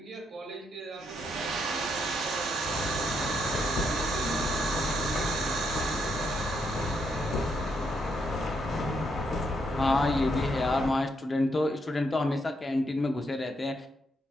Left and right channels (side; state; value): both; normal; correlation 0.77